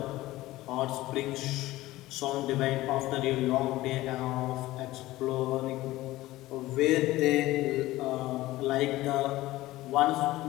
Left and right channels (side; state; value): right; quieter; 17.3 dB